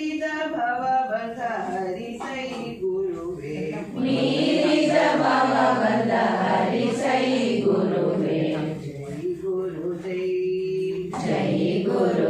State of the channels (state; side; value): identical; both; correlation 1.00